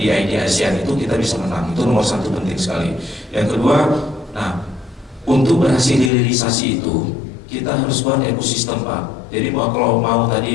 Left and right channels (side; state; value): right; drops out; at 6.1 s